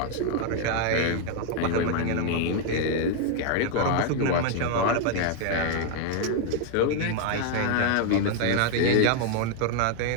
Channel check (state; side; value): different; both; correlation 0.00